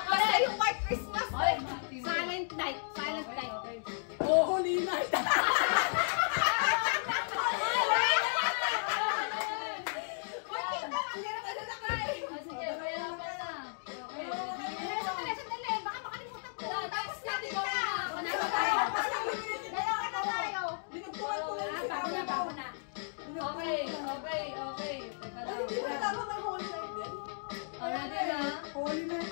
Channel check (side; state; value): right; silent; digital silence